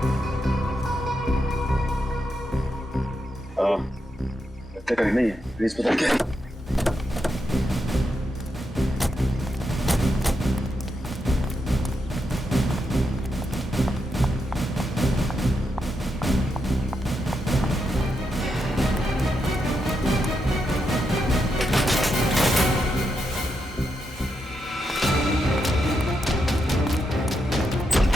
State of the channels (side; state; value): both; normal; correlation 0.83